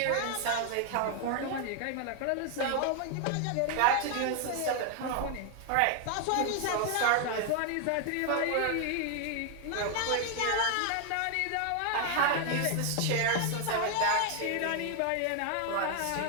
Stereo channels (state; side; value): different; both; correlation 0.00